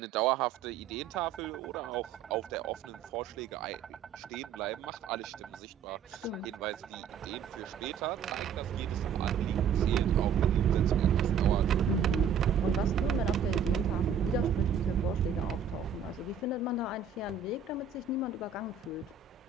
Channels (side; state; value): left; quieter; 6.9 dB